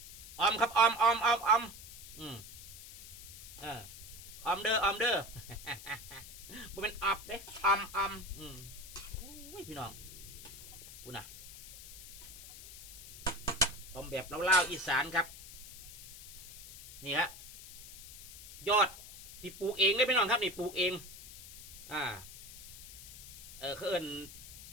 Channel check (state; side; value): noise; left; hiss, 14 dB below the sound